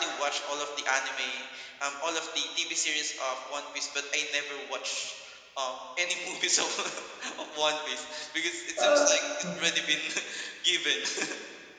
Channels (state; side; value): identical; both; correlation 1.00